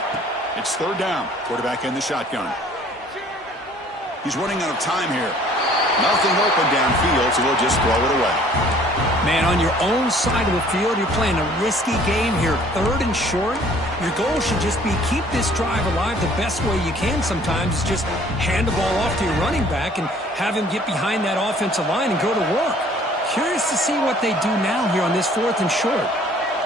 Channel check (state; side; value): normal; both; correlation 0.55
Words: It's third down. Quarterback in the shotgun. He's running out of time here. Nothing open downfield, so we'll just throw it away. Man, on your own side of the field, you're playing a risky game here. Third and short. Your goal should just be keep this drive alive the best way you can sometimes. Is just hand the ball off to your running back and have him get behind that offensive line and go to work. Curious to see what they do now here on this 4th and short.